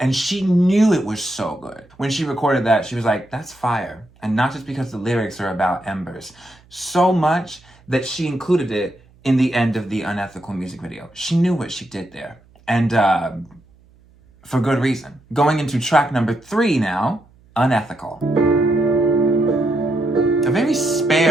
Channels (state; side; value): noise; right; hum, 29 dB below the sound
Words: she knew it was so good. When she recorded that, she was like, that's fire. And not just because the lyrics are about embers. So much that she included it in the end of the Unethical music video. She knew what she did there. And for good reason. Going into track number 3 now, Unethical. A very